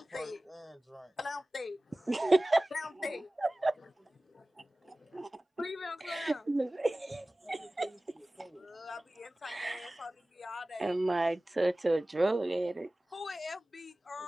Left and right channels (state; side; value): normal; both; correlation 0.97